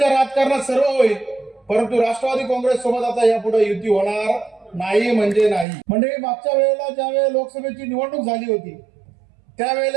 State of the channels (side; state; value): left; drops out; at 5.7 s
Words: राजकारणात सर्व होईल परंतु राष्ट्रवादी काँग्रेस सोबत आता यापुढे युती होणार नाही म्हणजे नाही। म्हणजे मागच्या वेळेला ज्यावेळेला लोकसभेची निवडणूक झाली होती